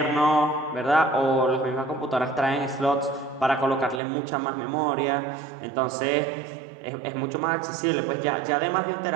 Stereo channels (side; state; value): left; drops out; at 4.0 s